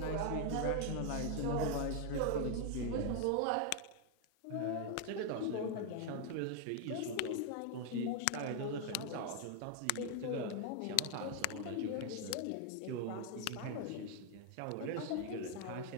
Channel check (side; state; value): both; different; correlation 0.00